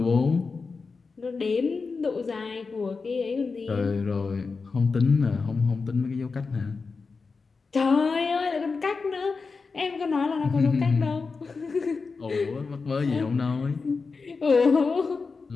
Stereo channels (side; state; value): right; quieter; 4.5 dB